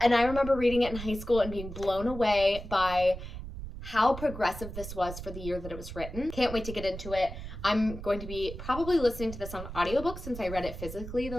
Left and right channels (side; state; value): right; noise; rumble, 10 dB below the sound